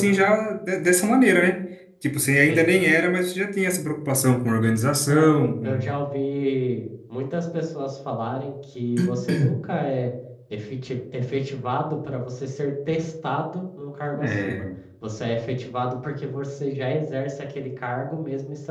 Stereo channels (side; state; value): both; identical; correlation 1.00